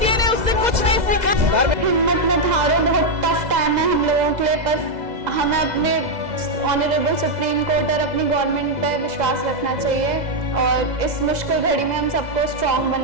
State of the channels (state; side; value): late; left; 2.0 ms